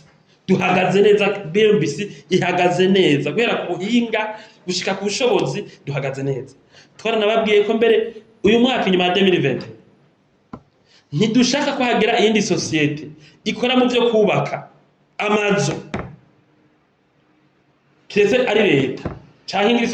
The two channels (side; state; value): both; identical; correlation 1.00